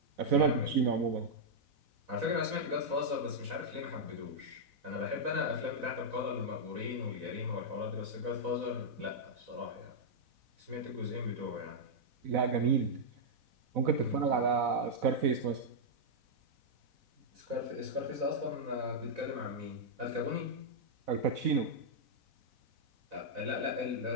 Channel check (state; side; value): late; left; 4.0 ms